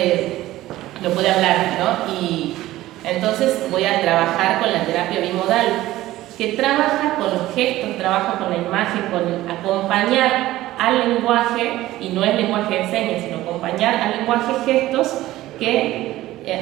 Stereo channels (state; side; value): quieter; left; 15.9 dB